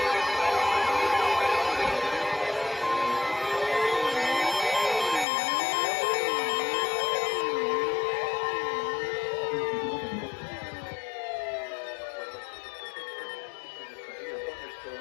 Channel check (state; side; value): drops out; right; at 5.2 s